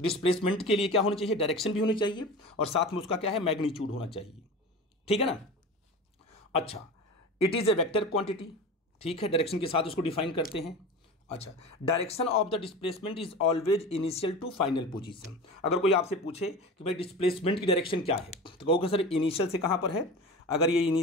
डिस्प्लेसमेंट के लिए क्या होना चाहिए? डायरेक्शन भी होनी चाहिए और साथ में उसका क्या है? मैग्नीट्यूड होना चाहिए। ठीक है ना। अच्छा, it is a vector quantity. ठीक है, डायरेक्शन के साथ उसको डिफाइन करते हैं। अच्छा, direction of the displacement is always initial to final position. अगर कोई आपसे पूछे कि भाई डिस्प्लेसमेंट की डायरेक्शन क्या है, तो कहोगे सर इनिशियल से कहाँ पर है? अगर ये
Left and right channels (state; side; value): normal; both; correlation 0.32